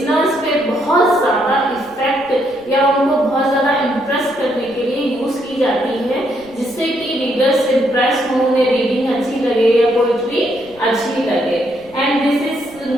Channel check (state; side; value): noise; right; rumble, 27 dB below the sound